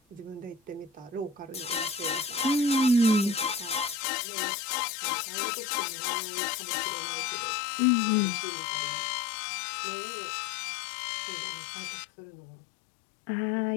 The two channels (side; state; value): right; drops out; at 4.0 s